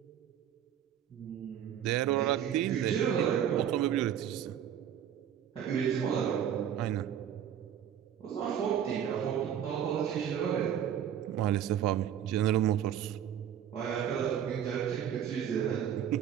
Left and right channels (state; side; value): quieter; left; 9.7 dB